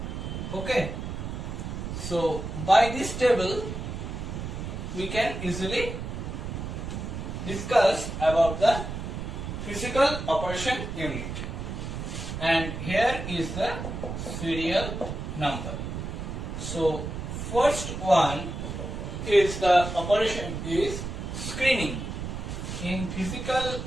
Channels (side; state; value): right; noise; rumble, 6 dB below the sound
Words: Okay. So by this table we can easily discuss about the physical operation unit. And here is the serial number. So first one is the operation is screening. In physical